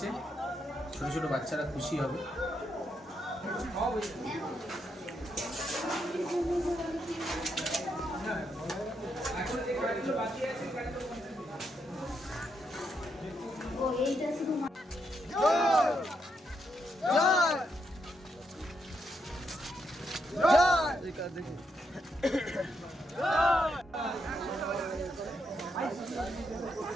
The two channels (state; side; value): normal; both; correlation 0.79